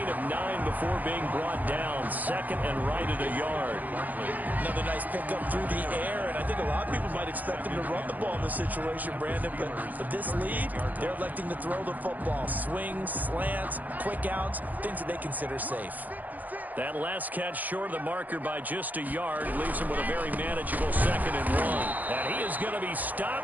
of 9 before being brought down. Second and right at a yard. Another nice pickup through the air, and I think a lot of people might expect him to run the ball in this situation, Brandon, but with this lead, they're electing to throw the football. Swings, slants, quick outs, things that they consider safe. That last catch short of the marker by just a yard leaves him with a very manageable 2nd and 1. And he is going to be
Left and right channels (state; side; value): late; left; 0.082 ms